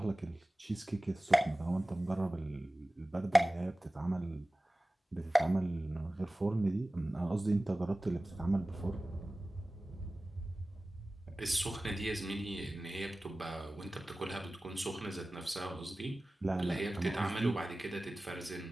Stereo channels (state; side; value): normal; both; correlation 0.97